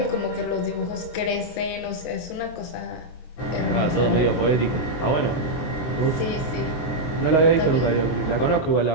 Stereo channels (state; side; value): late; right; 23 ms